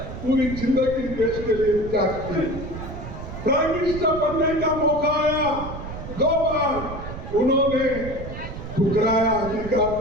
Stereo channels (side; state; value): right; noise; rumble, 9 dB below the sound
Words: जिंदगी देश के लिए त्याग की। प्राइम मिनिस्टर बनने का मौका आया, 2 बार उन्होंने ठुकराया अधिकार